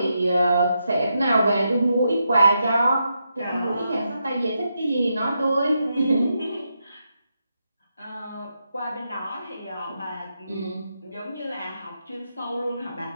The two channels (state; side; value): inverted; both; correlation -0.84